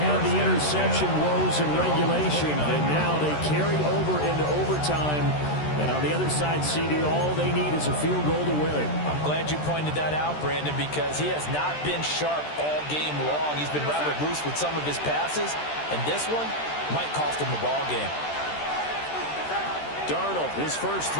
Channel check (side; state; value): right; late; 13 ms